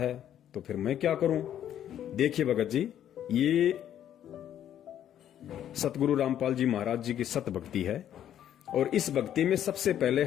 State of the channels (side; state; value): right; quieter; 10.6 dB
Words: तो फिर मैं क्या करूं? देखिए भगत जी, ये सतगुरु रामपाल जी महाराज जी की सत भक्ति है, और इस भक्ति में सबसे पहले